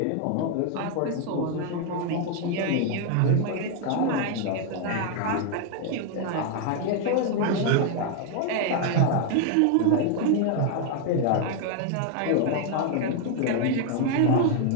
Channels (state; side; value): different; both; correlation 0.01